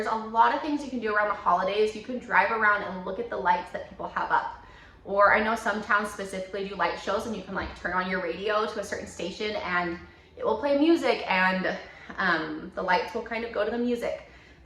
a lot of things you can do around the holidays. You can drive around and look at the lights that people have up. Or I know some towns specifically do light shows, and you can like turn on your radio to a certain station and it will play music, and the lights will kind of go to the music.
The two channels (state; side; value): identical; both; correlation 1.00